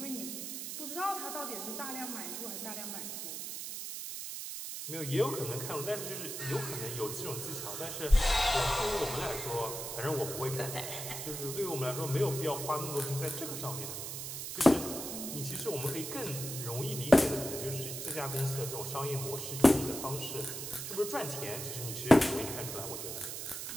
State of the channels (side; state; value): right; noise; hiss, 6 dB below the sound